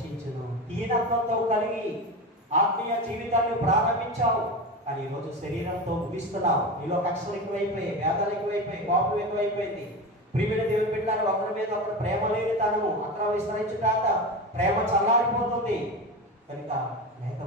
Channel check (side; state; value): both; normal; correlation 0.24